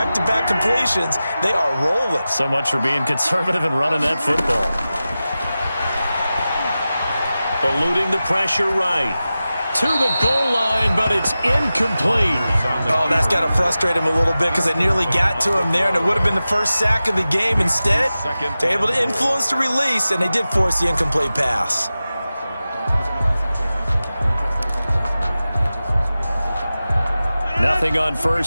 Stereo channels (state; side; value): inverted; both; correlation -0.95